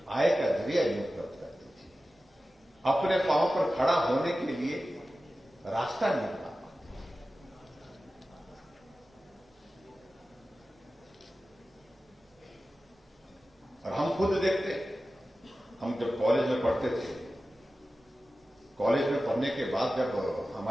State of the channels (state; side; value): normal; both; correlation 0.95